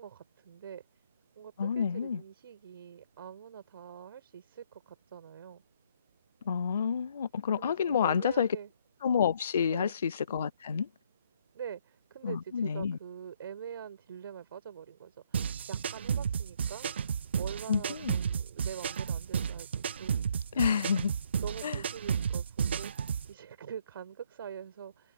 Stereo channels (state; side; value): inverted; both; correlation -0.68